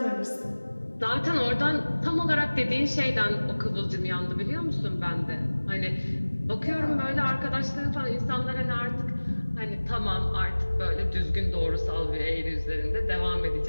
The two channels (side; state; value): both; inverted; correlation -1.00